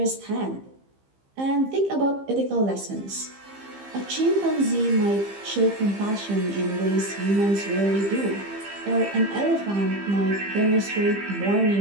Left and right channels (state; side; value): late; left; 15 ms